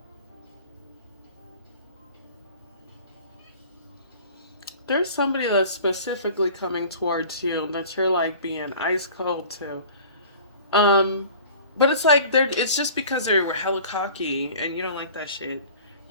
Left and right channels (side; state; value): both; inverted; correlation -0.44